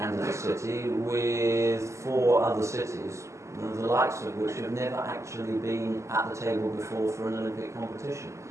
city with 4 other cities, the likes of which have never actually been at the table before for an Olympic competition.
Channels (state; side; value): late; left; 0.14 ms